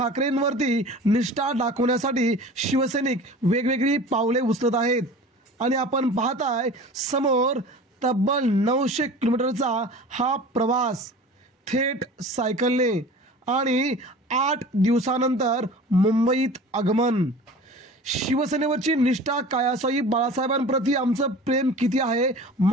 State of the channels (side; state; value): both; normal; correlation 0.39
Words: निष्ठा दाखवण्यासाठी शिवसैनिक वेगवेगळी पावले उचलत आहेत आणि आपण पाहताय समोर तब्बल 900 किलोमीटरचा हा प्रवास थेट सायकलने आणि 8 दिवसानंतर मुंबईत आगमन। शिवसेनेवरची निष्ठा काय असावी, बाळासाहेबांप्रती आमचं प्रेम किती आहे,